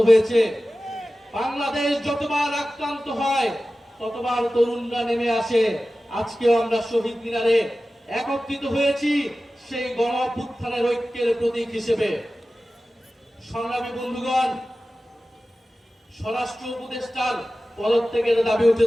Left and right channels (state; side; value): normal; both; correlation 0.95